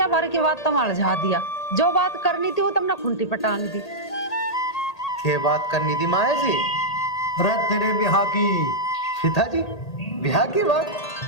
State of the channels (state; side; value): late; right; 1.8 ms